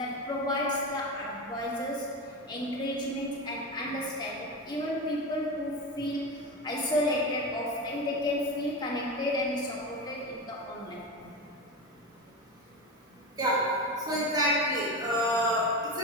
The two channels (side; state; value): both; normal; correlation 0.22